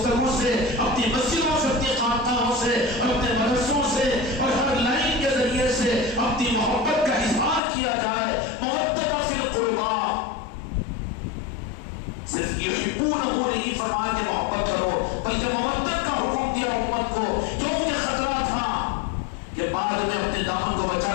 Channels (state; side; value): drops out; right; at 7.6 s